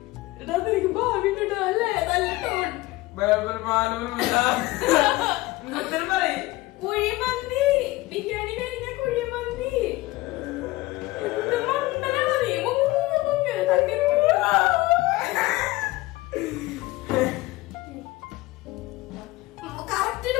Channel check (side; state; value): right; quieter; 19.6 dB